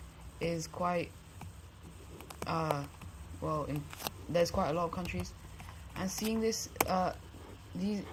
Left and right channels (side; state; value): both; identical; correlation 1.00